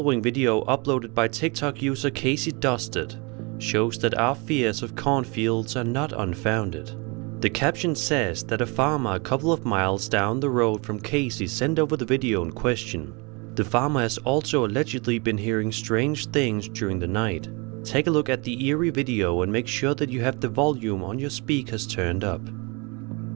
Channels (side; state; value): left; quieter; 29.6 dB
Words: video, uploaded by TikTok user Casey Dusted, shows that our fears of cornfields are not unfounded. The caption says that a farmer a couple of miles down the road from Casey sent over the video in question. The farmer has also allegedly been hearing strange things during the night. Take a look at the eerie video and make sure that you have the volume on your speakers turned up.